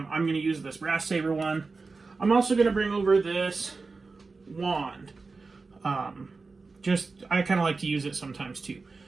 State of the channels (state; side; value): quieter; left; 4.1 dB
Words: going to use this brass saber one. I'm also going to bring over this wand. I kind of like to use it sometimes too.